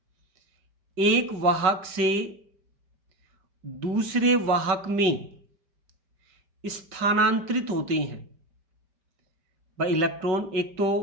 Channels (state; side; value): late; left; 5.4 ms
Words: एक वाहक से दूसरे वाहक में स्थानांतरित होते हैं, भाई इलेक्ट्रॉन एक